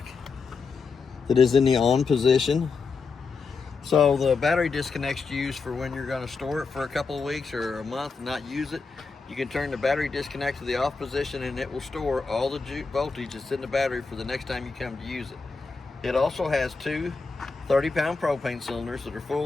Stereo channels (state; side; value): quieter; right; 4.6 dB